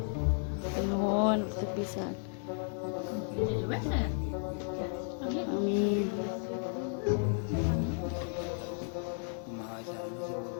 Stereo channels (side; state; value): right; silent; 55 dB below the other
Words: Nuhun pisan. Amin. Kumaha sarana si